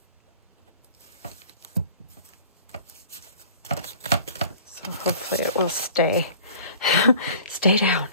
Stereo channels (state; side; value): inverted; both; correlation -0.47